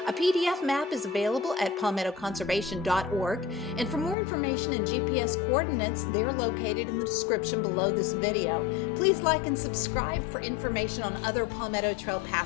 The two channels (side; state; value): right; drops out; at 4.2 s